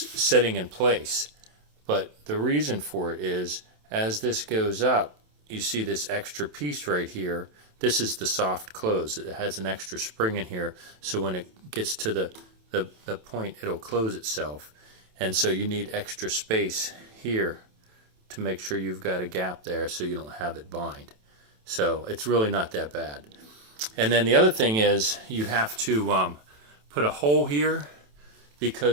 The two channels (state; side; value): late; left; 27 ms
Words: sitting in place. But the reason for it is, as this goes up, you see this extra piece right here. This is the soft close. It has an extra spring in here, so when it gets to the point, it'll close itself. And so you need extra space here to make sure you've got a gap there so you don't have it bind. So it's really not that bad. And then the other thing is, you have to put a hole here,